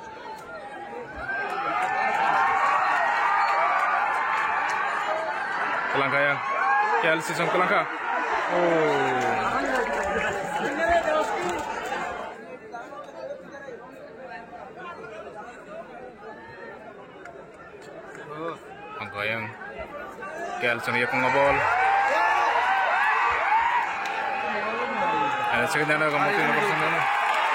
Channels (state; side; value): identical; both; correlation 1.00